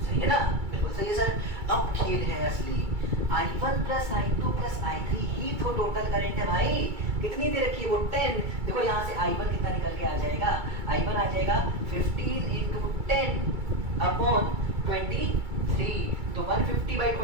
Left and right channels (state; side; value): late; left; 2.3 ms